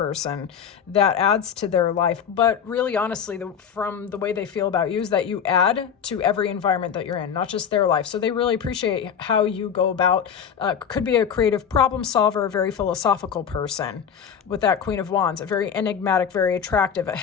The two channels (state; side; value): quieter; right; 7.7 dB